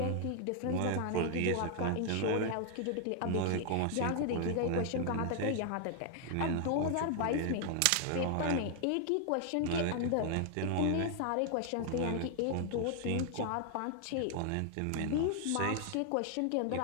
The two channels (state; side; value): different; both; correlation 0.00